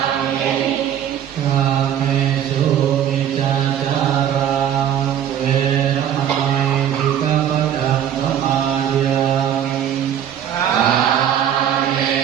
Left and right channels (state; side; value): quieter; left; 9.9 dB